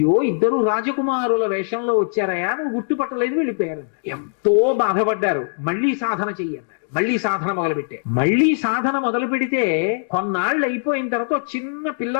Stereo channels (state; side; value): silent; right; digital silence